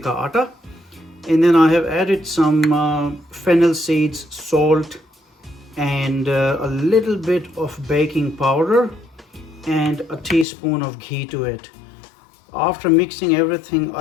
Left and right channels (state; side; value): drops out; right; at 10.5 s